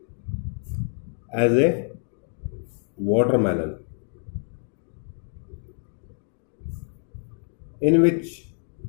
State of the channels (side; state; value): right; silent; 57 dB below the other